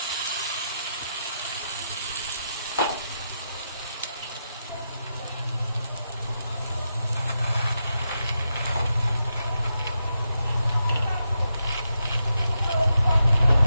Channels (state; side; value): inverted; both; correlation -0.85